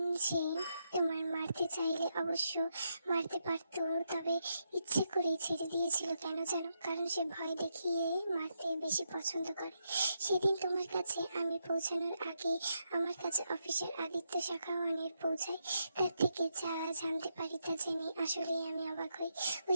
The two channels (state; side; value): inverted; both; correlation -0.82